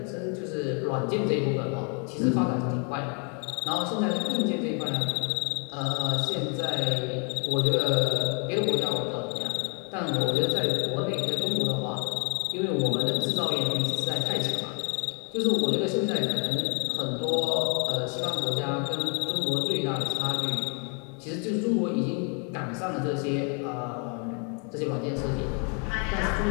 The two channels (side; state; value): right; quieter; 37.9 dB